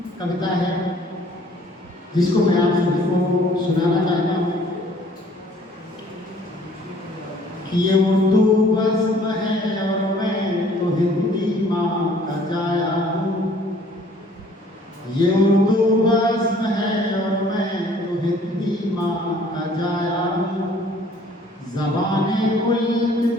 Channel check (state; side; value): normal; both; correlation 0.56